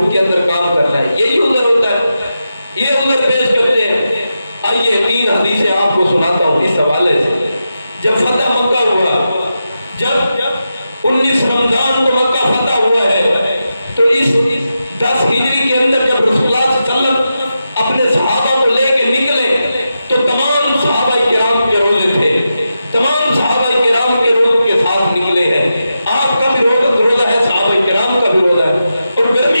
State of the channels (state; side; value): inverted; both; correlation -0.89